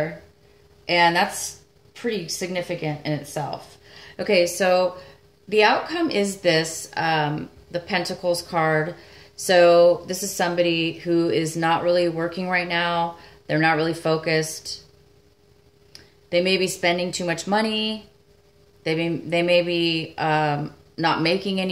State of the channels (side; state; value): both; identical; correlation 1.00